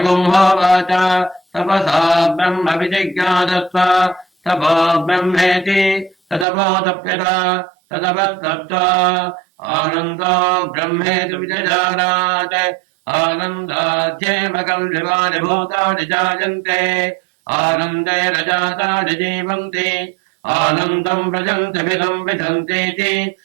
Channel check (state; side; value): drops out; left; at 6.5 s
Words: तपसा ब्रह्म विजिज्ञासस्व तपो ब्रह्मेति तदपोतप्यत तदपस्तप्त्वा आनन्दो ब्रह्मेति विजजानात् आनन्दाध्येव कल्विवानि भूतानि जायन्ते आनन्दे रजातानि जीवन्ति आनन्दम् व्रजन्ति विदम् विदन्तीति